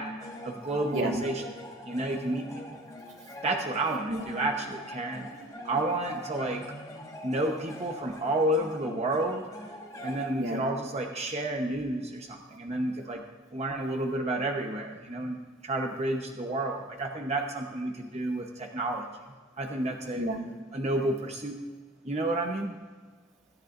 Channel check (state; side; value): normal; both; correlation 0.43